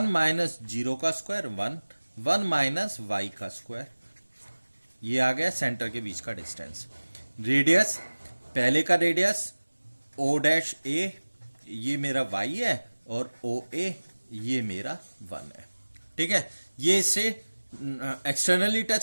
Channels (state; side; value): inverted; both; correlation -1.00